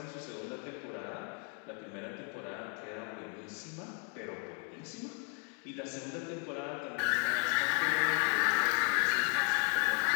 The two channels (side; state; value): right; quieter; 39.8 dB